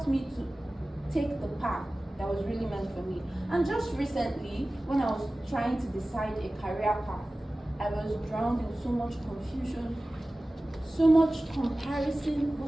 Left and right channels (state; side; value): normal; both; correlation 0.97